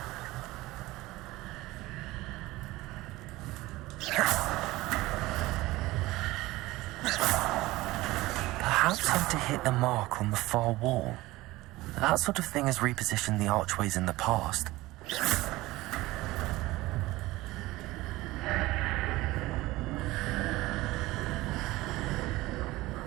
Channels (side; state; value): left; quieter; 18.9 dB